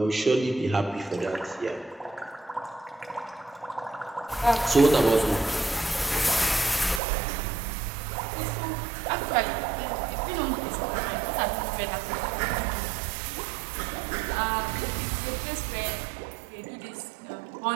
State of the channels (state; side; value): drops out; left; at 7.0 s